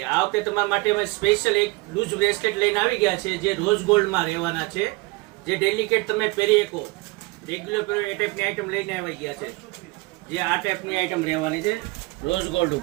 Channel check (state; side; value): quieter; left; 24.3 dB